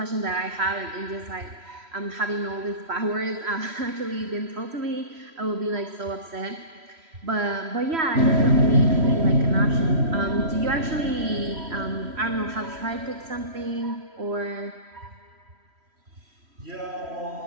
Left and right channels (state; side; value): late; left; 3.1 ms